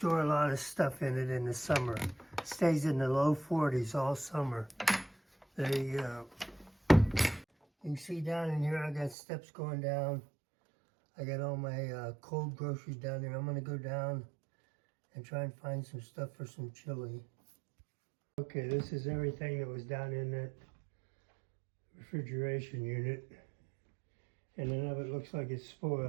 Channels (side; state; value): left; drops out; at 9.2 s